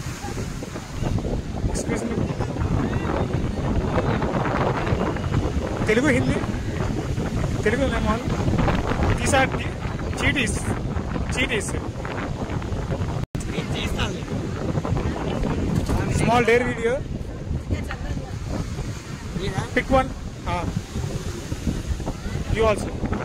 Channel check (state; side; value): identical; both; correlation 1.00